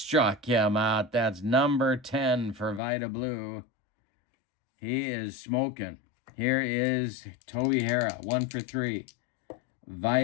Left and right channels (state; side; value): drops out; right; at 2.8 s